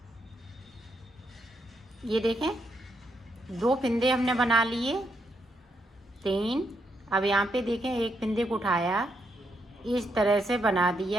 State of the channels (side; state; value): both; normal; correlation 0.79